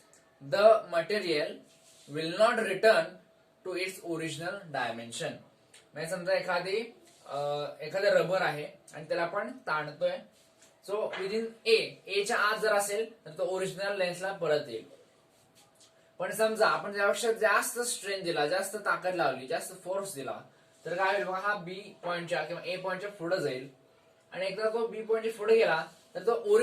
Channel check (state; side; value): identical; both; correlation 1.00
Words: the material will not return to its original dimension. म्हणजे समजा एखादं रबर आहे आणि त्याला आपण ताणतोय. सो विदिन ए च्या आत जर असेल तर तो ओरिजिनल लेन्सला परत येईल. पण समजा आपण त्यापेक्षा जास्त स्ट्रेन दिला, जास्त ताकद लावली, जास्त फोर्स दिला तर काय होईल बघा हा बी पॉइंटच्या किंवा ए पॉइंटच्या पुढे जाईल आणि एकदा तो बी पॉइंटच्या पुढे गेला तर तो